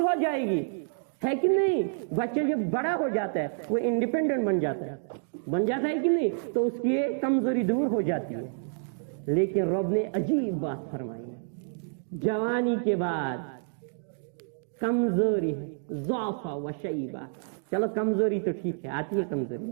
ہو جائے گی, ہے کہ نہیں؟ بچہ جب بڑا ہو جاتا ہے وہ انڈیپینڈنٹ بن جاتا ہے کہ نہیں, تو اس کی یہ کمزوری دور ہو جاتی ہے. لیکن رب نے عجیب بات فرمائی ہے, جوانی کے بعد کمزوری ہے, ضعف و شیبہ. چلو کمزوری تو ٹھیک ہے, آتی ہے کمزوری,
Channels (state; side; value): silent; left; digital silence